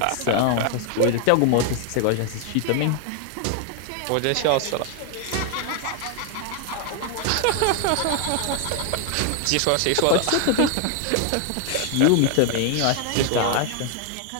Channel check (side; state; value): both; different; correlation 0.00